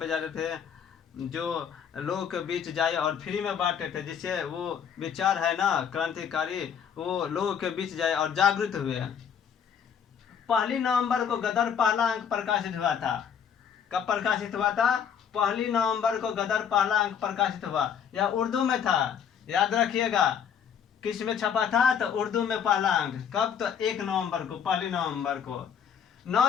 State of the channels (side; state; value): right; quieter; 7.8 dB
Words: जाते थे, जो लोगों के बीच जाए और फ्री में बांटे थे, जिससे वो विचार है ना क्रांतिकारी, वो लोगों के बीच जाए और जागृत हुए। 1 नवंबर को गदर पहला अंक प्रकाशित हुआ था। कब प्रकाशित हुआ था? 1 नवंबर को गदर पहला अंक प्रकाशित हुआ। यह उर्दू में था, याद रखिएगा। किस में छपा था? तो उर्दू में पहला अंक। कब? तो 1 नवंबर को, 1 नवंबर को। 9